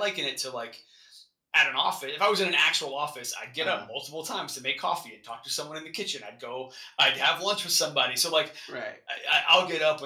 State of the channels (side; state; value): both; identical; correlation 1.00